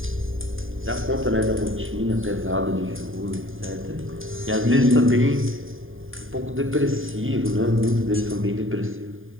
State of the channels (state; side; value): late; left; 0.59 ms